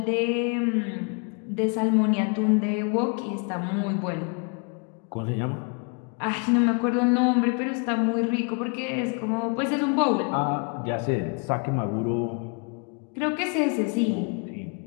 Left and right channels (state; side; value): quieter; right; 36.4 dB